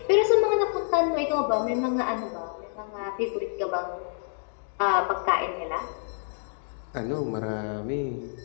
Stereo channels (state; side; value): silent; right; digital silence